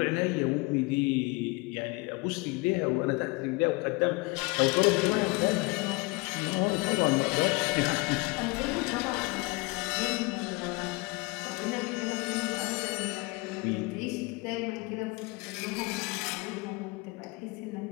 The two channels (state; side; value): quieter; right; 26.5 dB